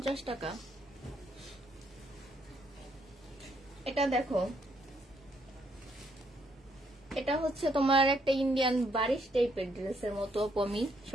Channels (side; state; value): both; normal; correlation 0.72